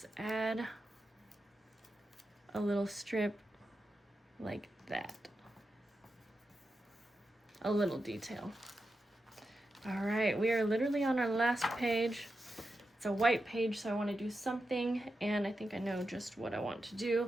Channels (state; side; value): normal; both; correlation 0.89